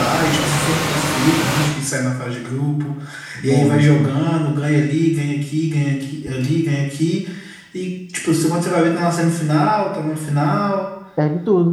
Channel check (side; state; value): both; identical; correlation 1.00